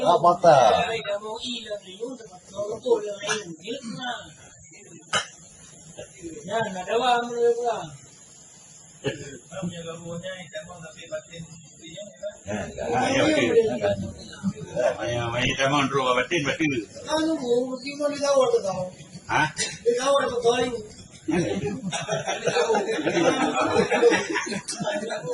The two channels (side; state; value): both; identical; correlation 1.00